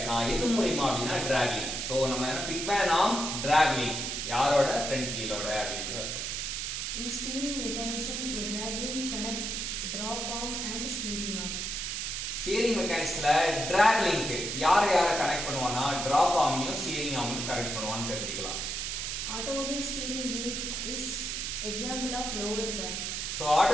எது மூலியமா அப்படின்னா டிராக் லிங்க். ஸோ நம்ம என்ன பிக்மேன் ஆர்ம் டிராக் லிங்க் யாரோட? ஃப்ரண்ட் வீலோட அப்படின்றது. In steering mechanism, a drag link connect drop arm and steering arm. Steering மெக்கானிக்ஸ்ல டிராக் லிங்க் யாரை கனெக்ட் பண்ணுவானா, டிராப் ஆர்மையும் ஸ்டியரிங் ஆர்மையும் கனெக்ட் பண்ணுவான்னு தெரிஞ்சுக்கலாம். Automobile steering gear is example of lower pair. So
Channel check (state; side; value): noise; right; hiss, 3 dB below the sound